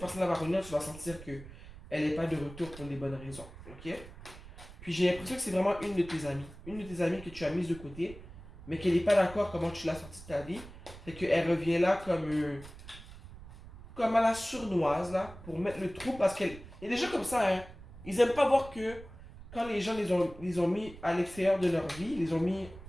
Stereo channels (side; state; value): right; noise; rumble, 16 dB below the sound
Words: va revenir, tu vas sentir que elle n'est pas de retour pour les bonnes raisons, ok? Puis j'ai l'impression que c'est vraiment une de tes amies. Une de tes amies que tu as mise de côté, mais qu'elle n'est pas d'accord comment tu l'as sortie de ta vie. Fait qu'elle revient là comme à la sournoise, là, pour mettre le trou, parce qu'elle... Il y a des gens comme ça, hein. Ils aiment pas voir que quand les gens les ont mis à l'extérieur de leur vie, les ont mis